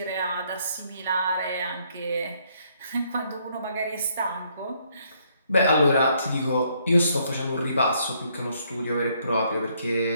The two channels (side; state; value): both; inverted; correlation -0.70